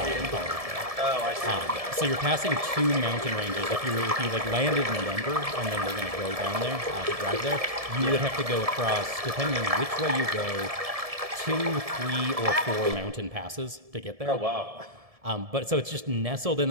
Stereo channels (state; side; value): late; left; 1.7 ms